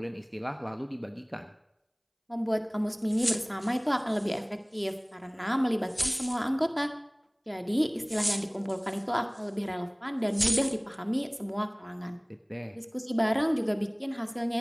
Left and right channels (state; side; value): identical; both; correlation 1.00